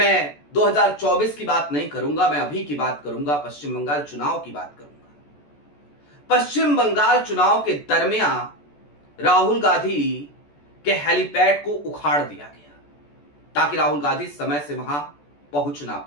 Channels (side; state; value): right; late; 14 ms